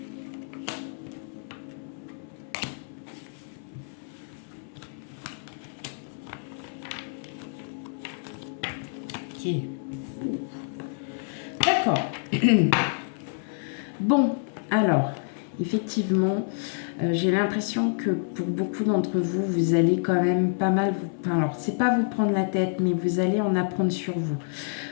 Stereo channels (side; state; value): right; silent; 60 dB below the other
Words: Ok. D'accord. Bon, alors, effectivement, j'ai l'impression que pour beaucoup d'entre vous, vous allez quand même pas mal... alors, c'est pas vous prendre la tête, mais vous allez en apprendre sur vous.